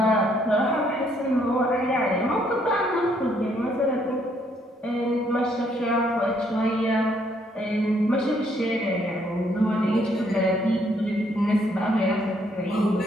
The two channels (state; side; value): normal; both; correlation 0.69